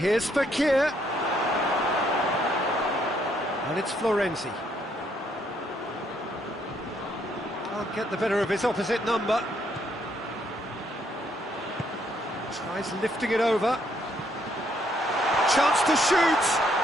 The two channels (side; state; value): both; normal; correlation 0.71